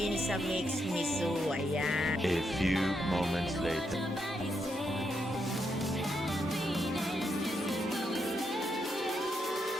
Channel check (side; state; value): both; normal; correlation 0.80